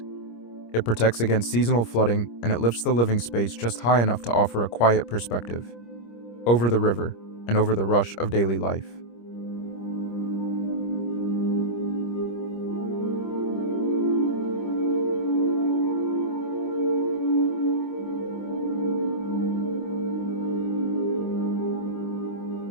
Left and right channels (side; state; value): right; late; 25 ms